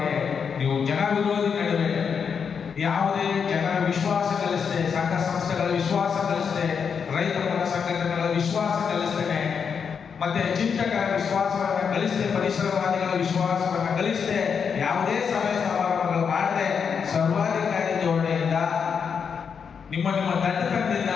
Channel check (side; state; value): right; quieter; 6.5 dB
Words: ನೀವು ಜನ ವಿರೋಧಿ ನಡುವೆ ಯಾವುದೇ ಜನರ ವಿಶ್ವಾಸ ಗಳಿಸದೆ, ಸಂಘ ಸಂಸ್ಥೆಗಳ ವಿಶ್ವಾಸ ಗಳಿಸದೆ, ರೈತ ಪರ ಸಂಘಟನೆಗಳ ವಿಶ್ವಾಸ ಗಳಿಸ್ತೇನೆ, ಮತ್ತೆ ಚಿಂತಕರ ವಿಶ್ವಾಸವನ್ನು ಗಳಿಸದೆ, ಪರಿಸರವಾದಿಗಳ ವಿಶ್ವಾಸವನ್ನು ಗಳಿಸದೆ, ಯಾವುದೇ ಸಭೆ ಸಮಾರಂಭಗಳು ಮಾಡದೆ ಸರ್ವಾಧಿಕಾರಿ ಧೋರಣೆಯಿಂದ ನಿಮ್ಮ ದಂಡಕದಿಂದ,